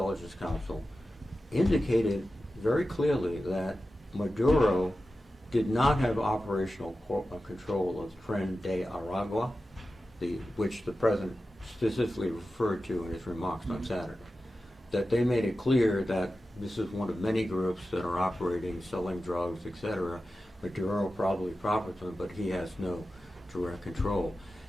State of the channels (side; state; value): both; normal; correlation 0.93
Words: Council, indicated very clearly that Maduro did not have operational control of Tren de Aragua, which the president specifically referred to in his remarks on Saturday. That they made it clear that this is one of many groups that are operating, selling drugs, etc. Maduro probably profits from it, but he has no direct control.